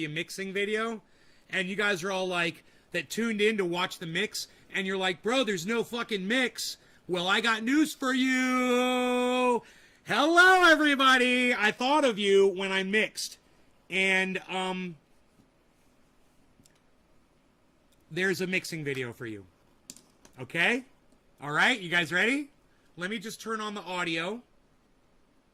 a mixing video, and you guys are all like, that tuned in to watch the mix, and you're like, bro, there's no fucking mix. Well, I got news for you. Hello, everybody. I thought of you when I mixed, and there's a mixing video for you. Okay? All right, you guys ready? Let me just turn on the audio,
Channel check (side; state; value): both; identical; correlation 1.00